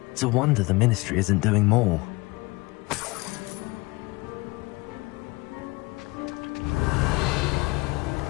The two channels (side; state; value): right; quieter; 23.7 dB